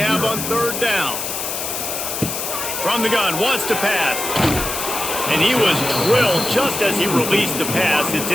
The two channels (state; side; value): noise; left; hiss, 4 dB below the sound